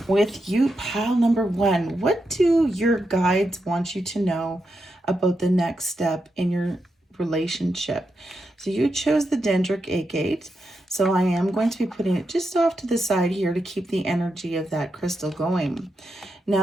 With you, pile number 1, what do your guides want you to know about the next step in your relationship? So you chose the dendritic agate. So I am going to be putting it just off to the side here to keep the energy of that crystal going.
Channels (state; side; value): normal; both; correlation 0.86